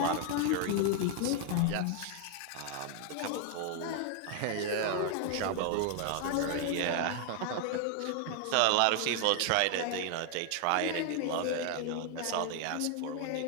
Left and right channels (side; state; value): both; different; correlation 0.00